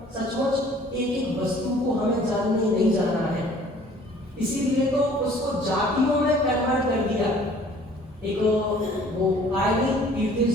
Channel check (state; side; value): normal; both; correlation 0.53